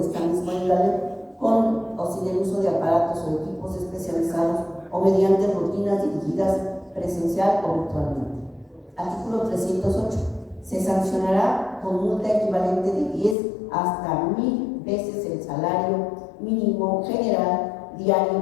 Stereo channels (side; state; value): right; drops out; at 13.4 s